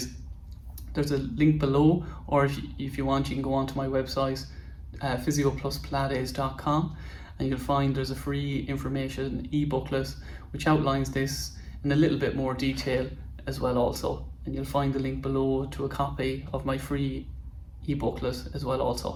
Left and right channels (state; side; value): identical; both; correlation 1.00